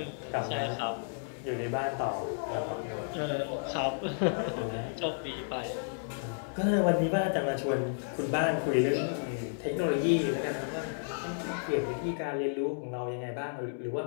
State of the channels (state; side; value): silent; right; digital silence